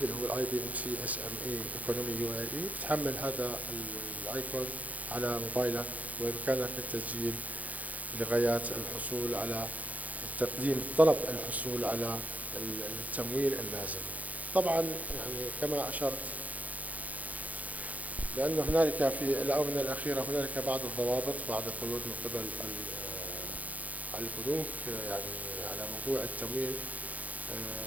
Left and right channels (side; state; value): left; late; 0.075 ms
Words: اللي هو الاي بي ام سي اس ام اي ايكونومي يو اي اي، بتحمل هذا الايكون على موبايلك وبامكانك التسجيل لغايات الحصول على تقديم طلب الحصول على التمويل اللازم. طبعا يعني كما اشرت لأن هنالك في الآونة الأخيرة هنالك بعض الضوابط، بعض القيود من قبل البنوك يعني على موضوع التمويل.